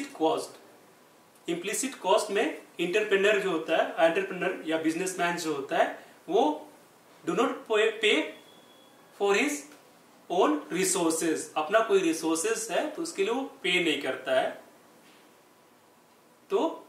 cost, implicit cost में इंटरप्रेन्योर जो होता है, एंटरप्रेन्योर या बिजनेसमैन जो होता है, वो डू नॉट पे फॉर हिज ओन रिसोर्सेज, अपना कोई रिसोर्सेज है तो उसके लिए वो पे नहीं करता है, तो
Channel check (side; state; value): both; identical; correlation 1.00